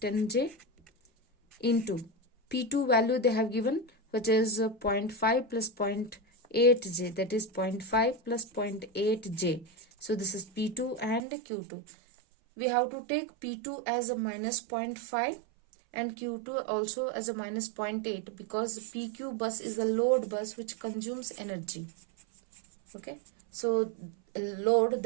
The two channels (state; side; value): drops out; left; at 11.2 s